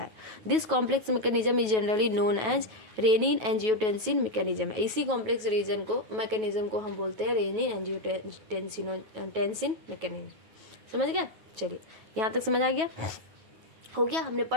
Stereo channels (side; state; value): left; late; 9.3 ms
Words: है। This complex mechanism is generally known as renin angiotensin mechanism, इसी कॉम्प्लेक्स रीजन को मैकेनिज्म को हम बोलते हैं रेनिन एंजियोटेंसिन मैकेनिज्म। समझ गया, चलिए यहाँ तक समझ आ गया, हो गया, हमने